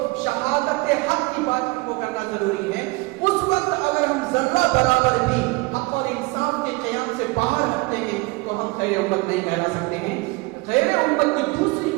شہادت حق کی بات کو کرنا ضروری ہے. اس وقت اگر ہم ذرہ برابر بھی حق اور انصاف کے قیام سے باہر ہٹتے ہیں تو ہم خیر امت نہیں کہلا سکتے ہیں. خیر امت کی دوسری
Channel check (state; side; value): quieter; left; 24.8 dB